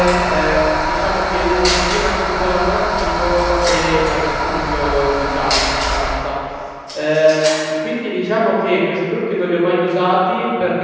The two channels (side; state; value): both; identical; correlation 1.00